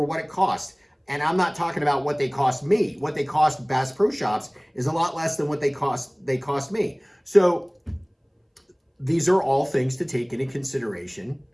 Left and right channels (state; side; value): identical; both; correlation 1.00